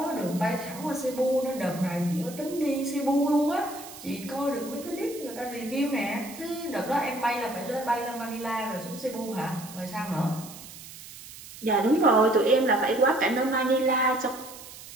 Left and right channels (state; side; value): noise; right; hiss, 15 dB below the sound